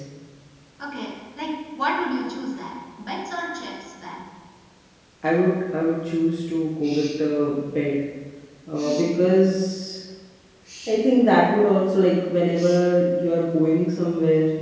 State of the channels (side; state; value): both; identical; correlation 1.00